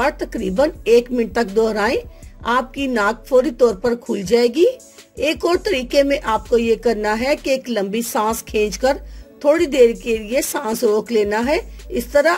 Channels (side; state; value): both; identical; correlation 1.00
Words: तकरीबन 1 मिनट तक दोहराएं। आपकी नाक फौरी तौर पर खुल जाएगी। एक और तरीके में आपको ये करना है कि एक लंबी सांस खींचकर थोड़ी देर के लिए सांस रोक लेना है। इस तरह